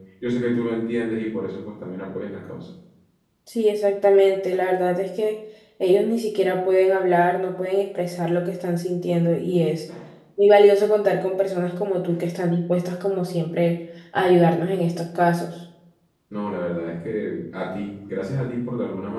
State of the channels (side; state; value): both; identical; correlation 1.00